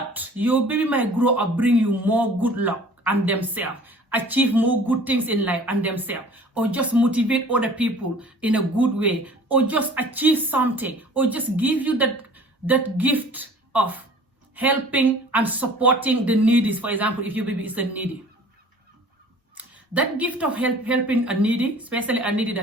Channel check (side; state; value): both; normal; correlation 0.48